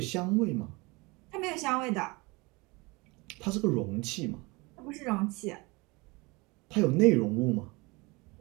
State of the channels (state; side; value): quieter; left; 25.5 dB